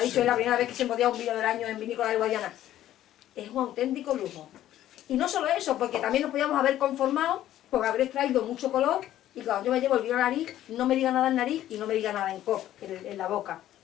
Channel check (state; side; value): quieter; right; 12.8 dB